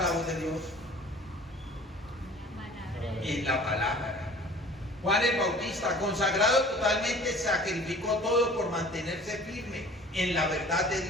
voz de Dios? En la palabra. Juan el Bautista, consagrado totalmente, sacrificó todo por mantenerse firme en la verdad de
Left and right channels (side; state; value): both; normal; correlation 0.47